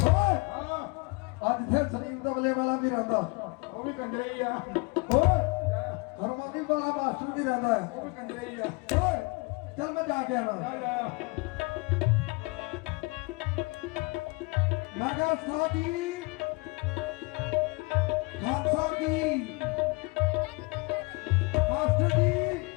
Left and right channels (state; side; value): quieter; right; 28.2 dB